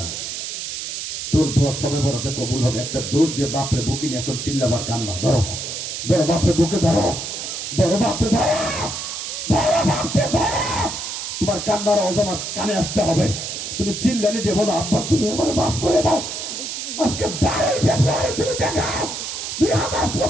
তোর দোয়া সবে বড়তে কবুল হবে। একটা দৌড় দিয়ে বাপরে বুকে নিয়ে এখন চিল্লাবার কান্না, ধরো ধরো বাপরে বুকে ধরো, ধরো বাপরে ধরো, ধরো বাপরে ধরো। তোমার কান্নার আওয়াজ আমার কানে আসতে হবে। তুমি চিল্লানি দিয়ে বলো, আব্বা তুমি আমার মাফ করে দাও। আজকে 12ই ফেব্রুয়ারি তুমি দেখাও,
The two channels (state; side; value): noise; right; hiss, 5 dB below the sound